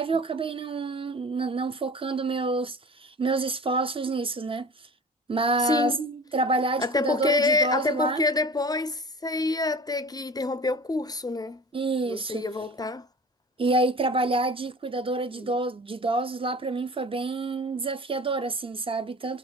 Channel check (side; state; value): both; normal; correlation 0.39